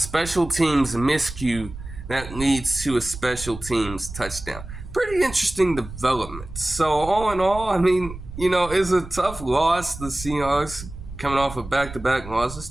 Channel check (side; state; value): right; noise; rumble, 13 dB below the sound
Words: teams miscue that leads to a special teams touchdown. Pretty interesting development. So all in all, it's a tough loss. The Seahawks coming off of back-to-back losses,